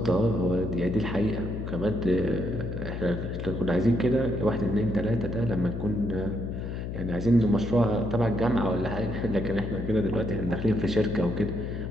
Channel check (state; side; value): noise; left; hum, 5 dB below the sound